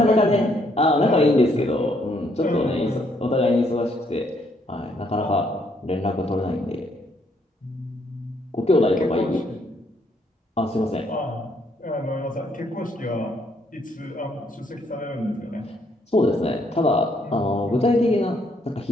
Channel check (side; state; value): both; normal; correlation 0.71